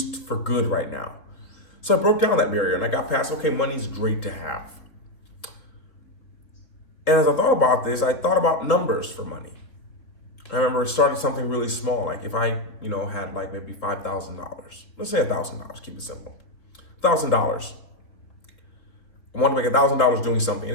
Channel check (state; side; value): late; right; 3.5 ms